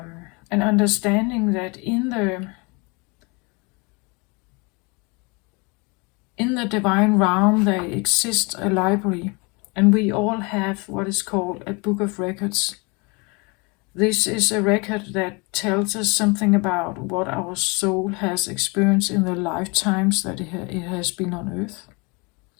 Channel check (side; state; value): right; quieter; 29.2 dB